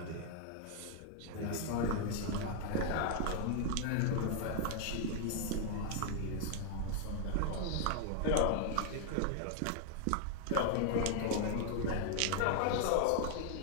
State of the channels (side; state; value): both; different; correlation 0.00